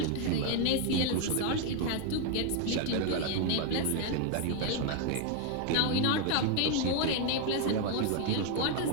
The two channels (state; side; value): different; both; correlation 0.01